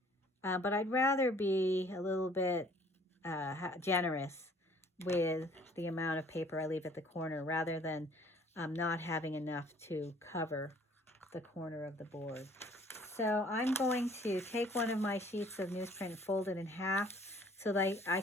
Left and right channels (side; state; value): both; normal; correlation 0.56